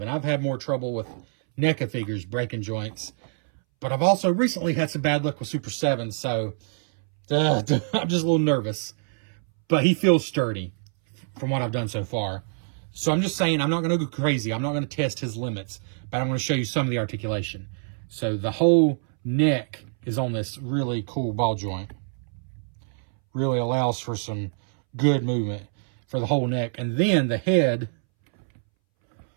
I've had more trouble with NECA figures breaking joints. But I've also recently had some bad luck with Super 7, so I'm just a little nervous. But he feels sturdy from what I've done so far. So I'm just saying I'm not going to go crazy. I'm not going to test his limits. But I'm going to show you some of the articulation. So the whole neck is on this really cool ball joint. Really allows for some good movement for the whole neck. And then the head,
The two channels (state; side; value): silent; left; 61 dB below the other